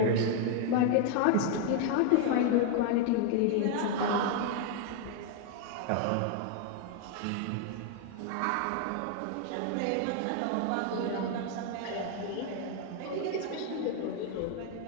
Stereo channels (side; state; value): both; different; correlation 0.00